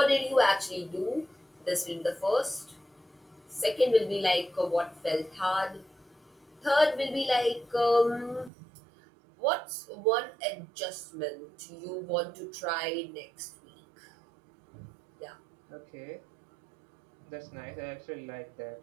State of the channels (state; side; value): drops out; left; at 8.5 s